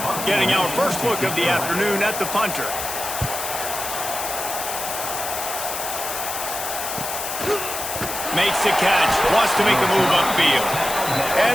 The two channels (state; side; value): noise; left; hiss, 5 dB below the sound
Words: Getting our first look of the afternoon at the punter. Makes the catch, wants to make a move upfield.